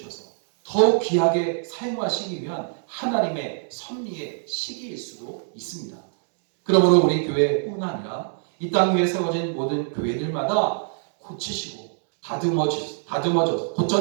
더욱 귀하게 사용하시기 위한 하나님의 섭리의 시기일 수도 있습니다. 그러므로 우리 교회뿐 아니라 이 땅 위에 세워진 모든 교회들마다 고치시고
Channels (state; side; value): silent; left; digital silence